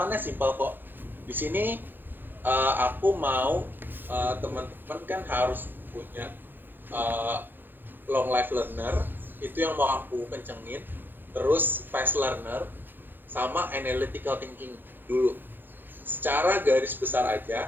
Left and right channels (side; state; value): left; late; 0.094 ms